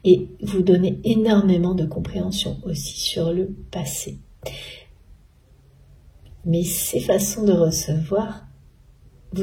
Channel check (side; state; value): both; identical; correlation 1.00